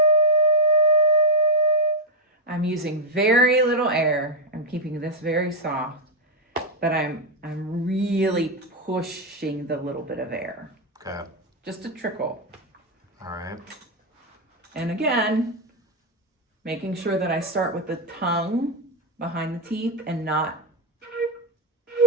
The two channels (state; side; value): normal; both; correlation 0.01